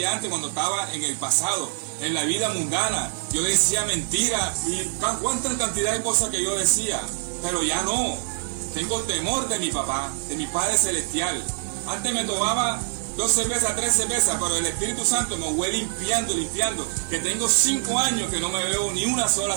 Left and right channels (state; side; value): silent; left; digital silence